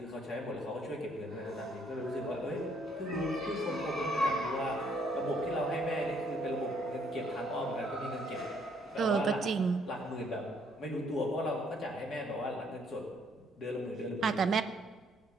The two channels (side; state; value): both; normal; correlation 0.67